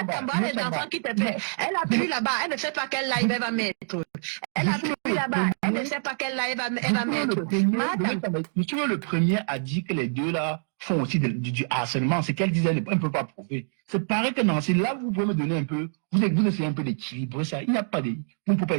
appuie là-bas, elle ne sait pas quel live elle va mettre. Elle appuie là-bas, elle ne sait pas quel live elle va mettre. Le premier a dit que les deux là font aussi du harcèlement. C'est qu'elle disait, elle ne peut pas prouver. C'est pareil que Nancy, là vous pouvez me donner un peu, vous essayez un peu d'équilibrer ça. Il n'y a pas de, vous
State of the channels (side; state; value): left; silent; digital silence